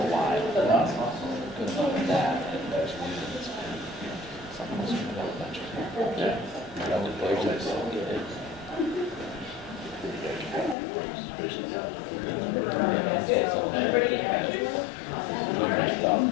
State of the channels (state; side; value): drops out; right; at 10.8 s